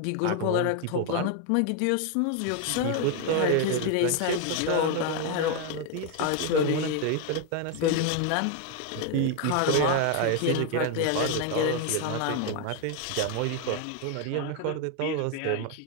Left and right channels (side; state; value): both; different; correlation 0.01